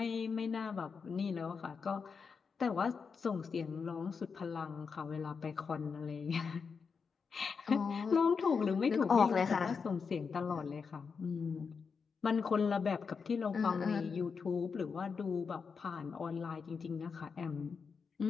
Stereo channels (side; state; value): right; quieter; 5.6 dB